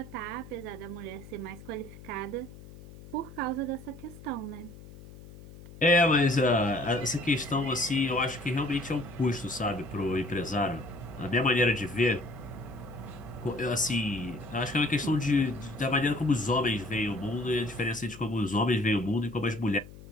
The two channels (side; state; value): left; noise; hum, 17 dB below the sound